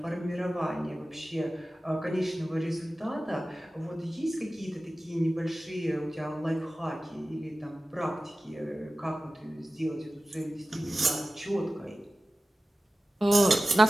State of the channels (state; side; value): normal; both; correlation 0.96